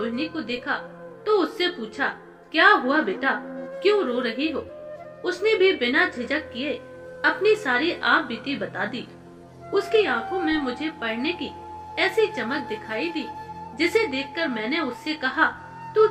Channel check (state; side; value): identical; both; correlation 1.00